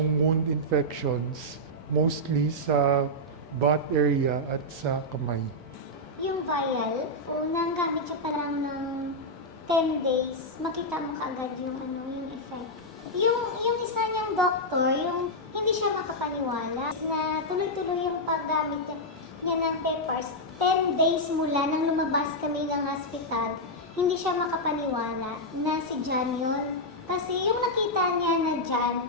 wound infections, mostly sa butt area at sa kamay. Yung vial, unang gamit siya pa lang ng 10 days, makita mo kaagad yung yung effect. Yung isa niyang doktor, yung hindi siya makapaniwala na tuloy-tuloy yung paggamit niya ng peppers. 10 days mula nang lumabas kami ng hospital, hindi siya makapaniwala na si John yun. Kasi yung nakita niya na John,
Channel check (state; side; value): normal; both; correlation -0.05